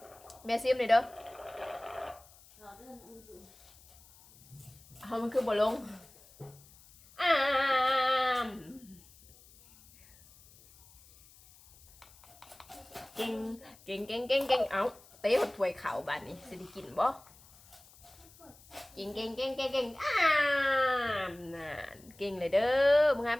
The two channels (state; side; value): noise; left; hiss, 25 dB below the sound